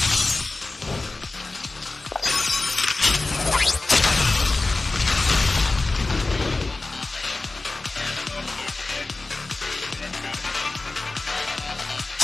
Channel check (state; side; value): quieter; right; 3.3 dB